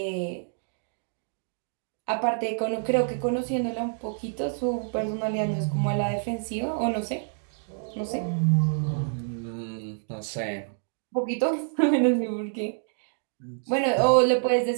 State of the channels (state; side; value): silent; left; digital silence